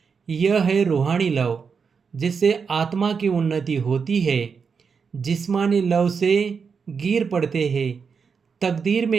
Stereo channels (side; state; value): left; quieter; 5.8 dB